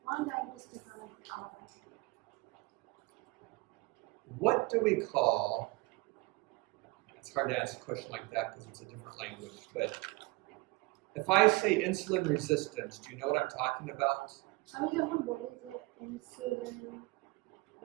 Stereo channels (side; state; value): left; quieter; 23.8 dB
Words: 1 ডায়াবেটিস থেকে অনেক আলাদা। What do we call, it's hard to answer a question like that because it's a different language, but if I say insulin resistance, do you know what I'm talking about? আমি যখন বলি যে insulin